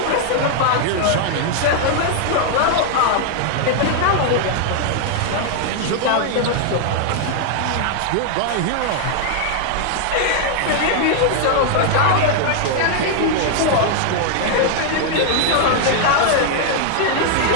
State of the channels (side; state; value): both; different; correlation 0.00